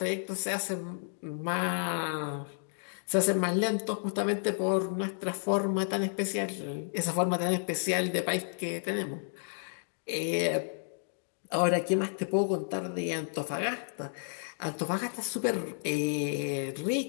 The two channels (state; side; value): silent; right; digital silence